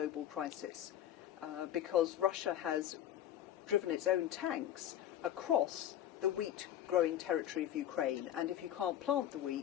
crisis, because Russia has driven its own tanks across the wheat-growing territory of Ukraine, and if you can't plant the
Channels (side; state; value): right; quieter; 11.3 dB